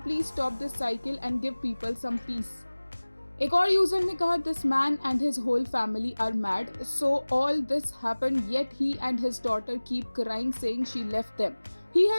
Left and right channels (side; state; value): both; inverted; correlation -1.00